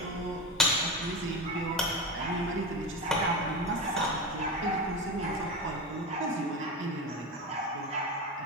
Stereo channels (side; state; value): both; normal; correlation 0.22